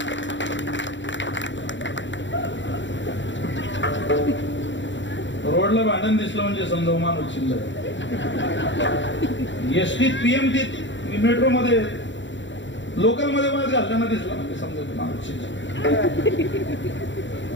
रोडला भांडण दिसलं म्हणजे समजा माणूस चिल्लर. एसटीत पीएमटीत मेट्रो मध्ये लोकल मध्ये वाद घालताना दिसला म्हणजे समजा माणूस चिल्लर.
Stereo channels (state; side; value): late; right; 0.54 ms